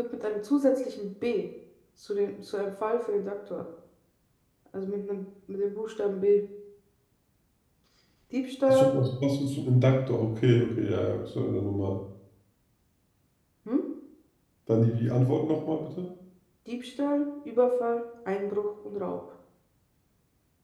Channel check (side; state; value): both; identical; correlation 1.00